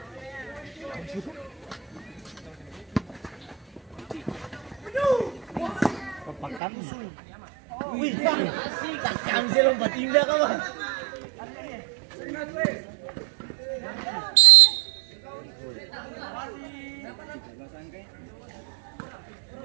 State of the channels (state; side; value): drops out; left; at 6.6 s